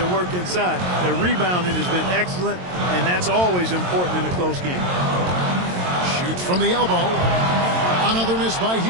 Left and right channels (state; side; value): late; left; 22 ms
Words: work inside. Their rebounding has been excellent, and that's always important in a close game. Shoots from the elbow. Another miss by